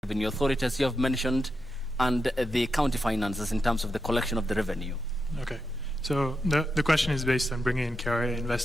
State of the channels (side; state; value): both; normal; correlation 0.87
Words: Revenue Authority, as you have mentioned, and the county finances in terms of the collection of the revenue? Okay. So the question is based on bringing in KRA